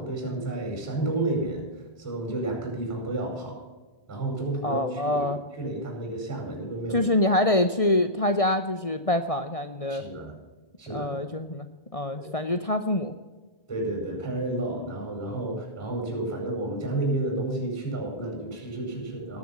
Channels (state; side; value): late; right; 1.6 ms